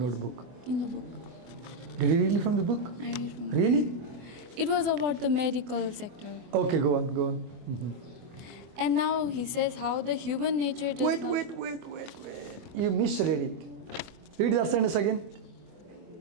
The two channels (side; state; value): left; late; 25 ms